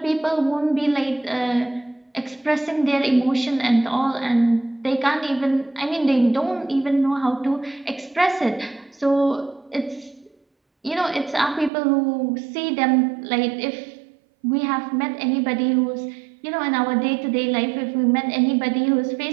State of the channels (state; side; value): drops out; left; at 11.7 s